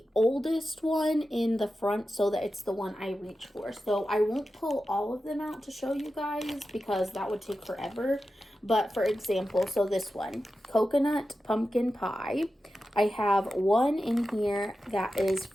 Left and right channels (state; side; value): normal; both; correlation 0.92